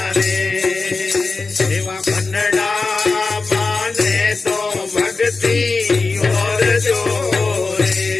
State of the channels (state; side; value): quieter; right; 4.0 dB